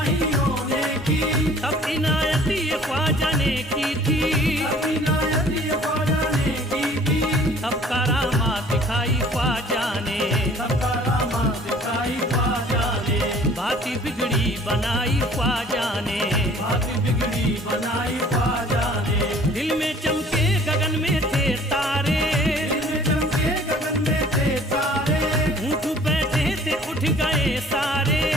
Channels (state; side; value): normal; both; correlation 0.52